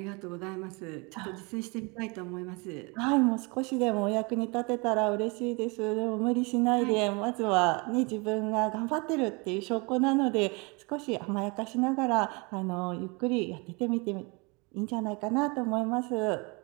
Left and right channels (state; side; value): quieter; left; 29.1 dB